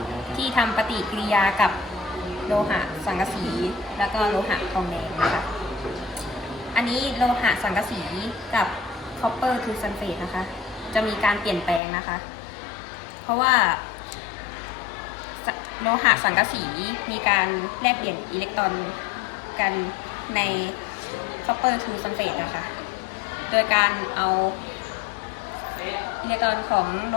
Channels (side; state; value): right; drops out; at 11.8 s